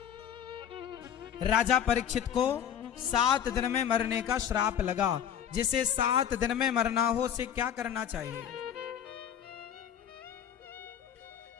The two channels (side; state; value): right; quieter; 9.2 dB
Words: राजा परीक्षित को 7 दिन में मरने का श्राप लगा। जिसे 7 दिन में मरना हो उसे क्या करना चाहिए?